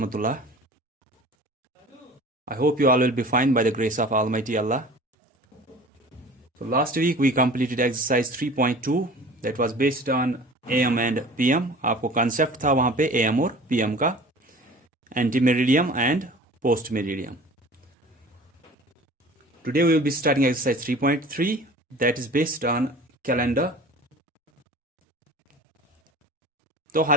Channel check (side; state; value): both; normal; correlation 0.43